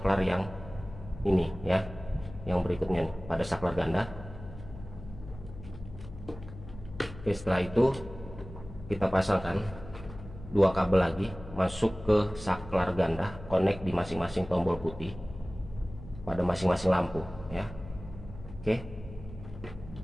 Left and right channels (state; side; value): noise; left; hum, 14 dB below the sound